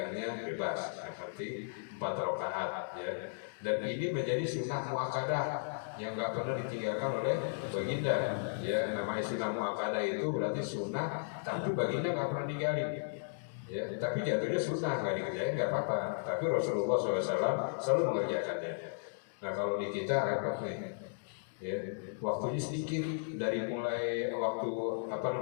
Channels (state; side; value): silent; right; digital silence